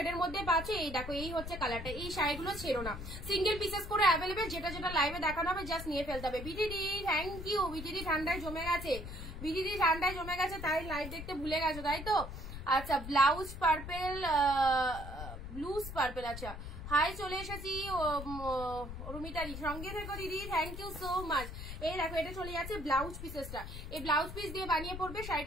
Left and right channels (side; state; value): left; noise; rumble, 9 dB below the sound